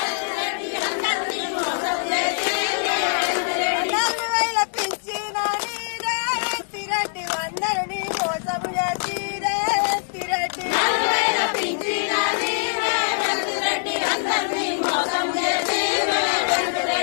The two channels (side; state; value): right; silent; digital silence